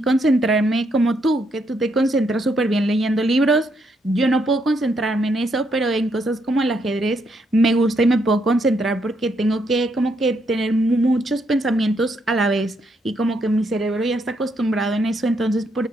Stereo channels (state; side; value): normal; both; correlation 0.76